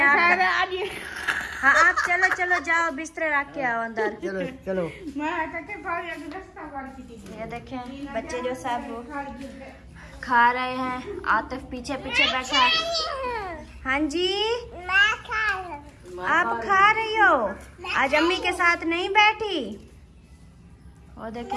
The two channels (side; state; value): both; identical; correlation 1.00